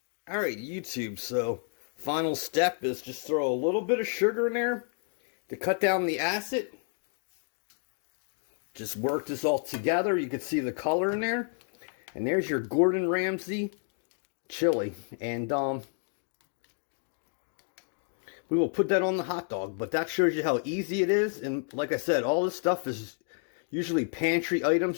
Alright, YouTube, so final step is just throw a little bit of sugar in there to cut down the acid. Just work this all together. You can see the color in there. And there's your Gordon Ramsay chili. And, we will put that on the hot dog, but that shows you how easy it is. And like I said, all this stuff is usually pantry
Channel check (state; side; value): silent; right; 55 dB below the other